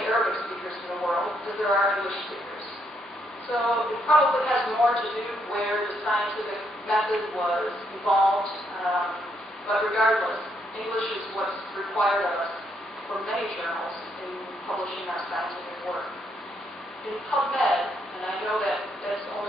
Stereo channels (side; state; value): both; normal; correlation 0.74